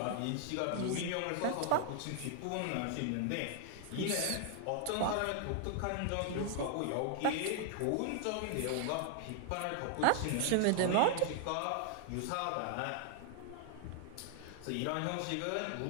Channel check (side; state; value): both; different; correlation 0.00